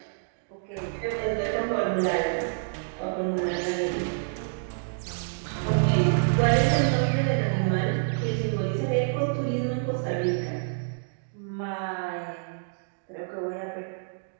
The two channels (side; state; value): left; silent; digital silence